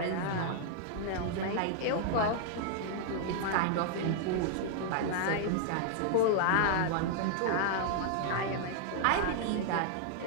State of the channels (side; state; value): both; different; correlation 0.00